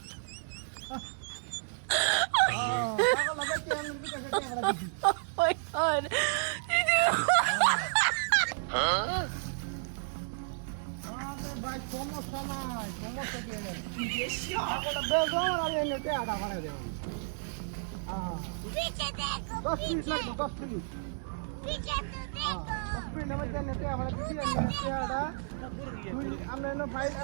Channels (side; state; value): left; silent; digital silence